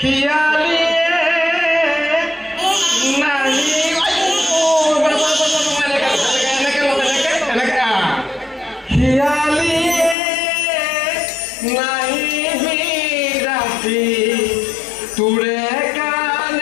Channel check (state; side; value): drops out; right; at 10.2 s